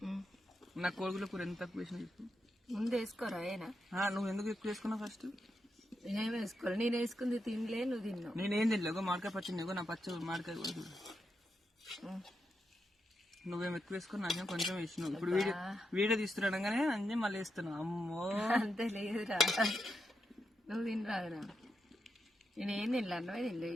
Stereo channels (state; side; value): normal; both; correlation 0.85